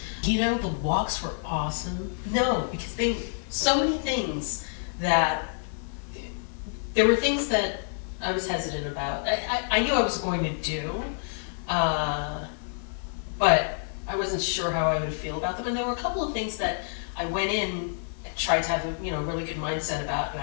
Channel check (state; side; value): silent; right; 59 dB below the other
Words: The walks were awesome. No, because so many things that, there were things that I was hesitant about. I knew I was going to do, but I wasn't sure how I would feel about them. And there were a couple of things that I went in and tried to have a really good mindset about, and